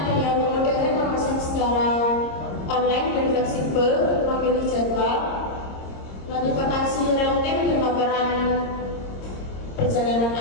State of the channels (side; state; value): right; late; 26 ms